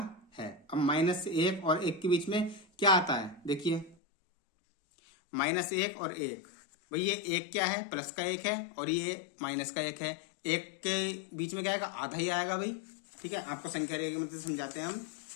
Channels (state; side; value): drops out; right; at 4.0 s